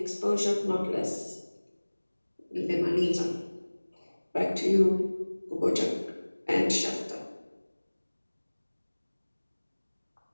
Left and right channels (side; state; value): both; inverted; correlation -1.00